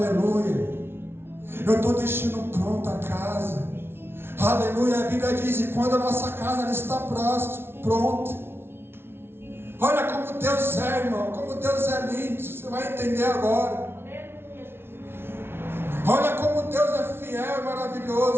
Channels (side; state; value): left; late; 0.12 ms